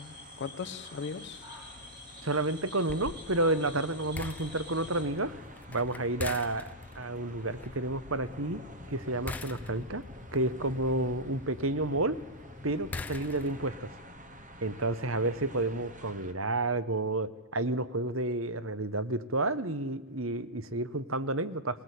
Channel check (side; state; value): both; normal; correlation -0.09